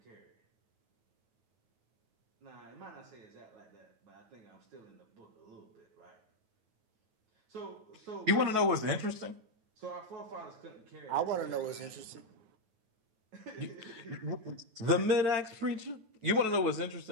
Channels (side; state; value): left; late; 9.3 ms